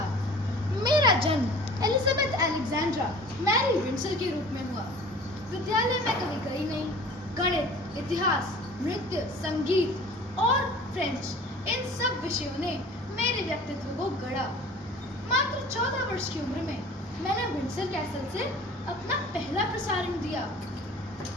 मेरा जन्म एलिजाबेथ अलेक्जेंड्रा मैरी विंडसर के रूप में हुआ। विद्यालय में कभी गई नहीं। गणित, इतिहास, नृत्य, संगीत और फ्रेंच, इन सब विषयों ने मेरे व्यक्तित्व को गढ़ा। मात्र 14 वर्ष की उम्र में मैंने विंडसर कैसल से अपना पहला प्रसारण दिया।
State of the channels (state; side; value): normal; both; correlation 0.44